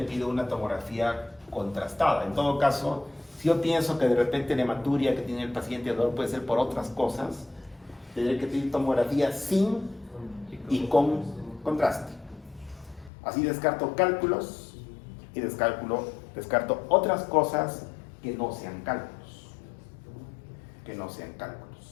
pido una tomografía contrastada. En todo caso, si yo pienso que de repente la hematuria que tiene el paciente dolor puede ser por otras cosas, tendré que pedir tomografía sin y con contraste. Así descarto cálculos y descarto otras cosas que no sean cálculos.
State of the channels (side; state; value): right; drops out; at 13.1 s